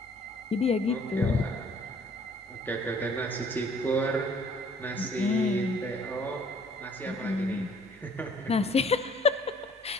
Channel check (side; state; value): both; normal; correlation 0.57